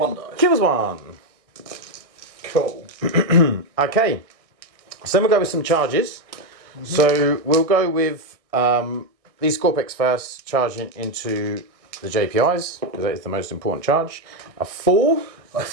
die. kills 1. Cool. Okay, so then we'll go with some charges. So we'll go with these Scorpex first, charging into the JPIs, because that is the most important charge. A 4. I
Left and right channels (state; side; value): late; left; 1.6 ms